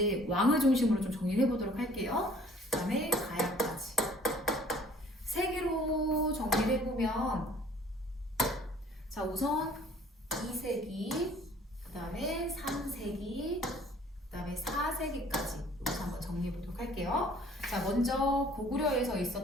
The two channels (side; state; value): both; normal; correlation 0.54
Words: 왕을 중심으로 좀 정리를 해보도록 할게요. 그 다음에 가야까지 세계로 정리를 해보면, 자 우선 2세기, 그 다음에 3세기, 그 다음에 4세기까지 여기서 한번 정리해 보도록 할게요. 자 먼저 고구려에서